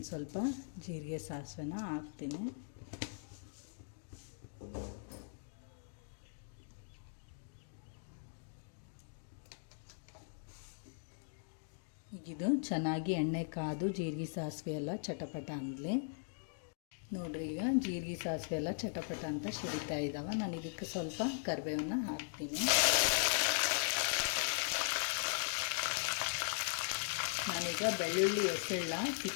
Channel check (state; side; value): silent; right; digital silence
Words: ಸ್ವಲ್ಪ ಜೀರಿಗೆ ಸಾಸಿವೆನ ಹಾಕ್ತೀನಿ. ಈಗಿದು ಚೆನ್ನಾಗಿ ಎಣ್ಣೆ ಕಾದು ಜೀರಿಗೆ ಸಾಸಿವೆ ಎಲ್ಲ ಚಟಪಟ ಅಂದಲಿ. ನೋಡ್ರಿ, ಈಗ ಜೀರಿಗೆ ಸಾಸಿವೆ ಎಲ್ಲ ಚಟಪಟ ಅಂತ ಸಿಡಿತಾ ಇದ್ದಾವೆ. ನಾನು ಇದಕ್ಕೆ ಸ್ವಲ್ಪ ಕರಿಬೇವನ್ನ ಹಾಕ್ತೀನಿ. ನಾನೀಗ ಬೆಳ್ಳುಳ್ಳಿ ಎಸೆಳ್ಳ